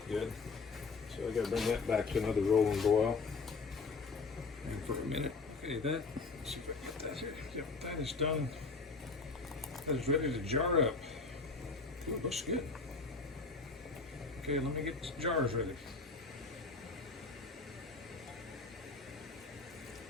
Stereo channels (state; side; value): quieter; right; 4.2 dB